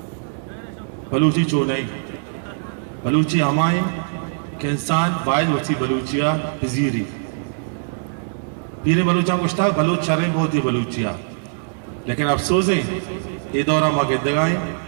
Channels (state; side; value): silent; left; digital silence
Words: بلوچی چو نہیں بلوچی ہمائیں کہ انسان باید وچی بلوچیا پذیری پیرے بلوچاں گوشتا بلوچ شریں بہت ہی بلوچیا لیکن افسوسیں یہ دورہ ماں گدگائیں